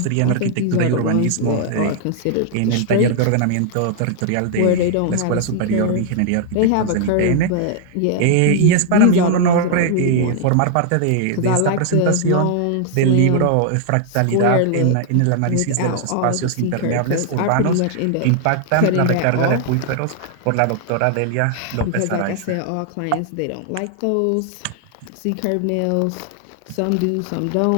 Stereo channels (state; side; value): different; both; correlation 0.00